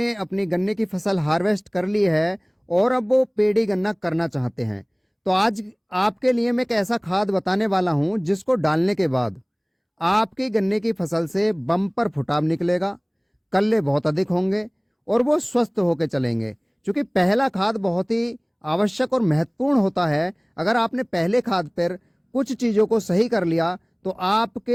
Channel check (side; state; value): both; identical; correlation 1.00